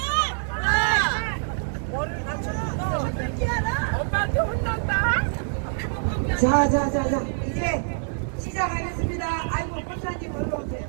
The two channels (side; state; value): left; silent; 62 dB below the other